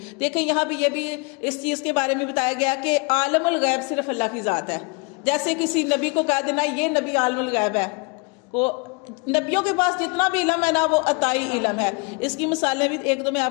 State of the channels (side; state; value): right; quieter; 31.8 dB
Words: देखें यहाँ भी ये भी इस चीज़ के बारे में बताया गया कि आलमुल गैब सिर्फ अल्लाह की ज़ात है। जैसे किसी नबी को कह देना ये नबी आलमुल गैब है, को नबियों के पास जितना भी इलम है ना वो अताई इलम है। इसकी मिसालें भी एक दो मैं